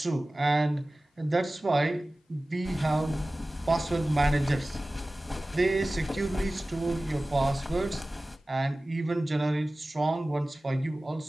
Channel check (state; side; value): normal; both; correlation 0.97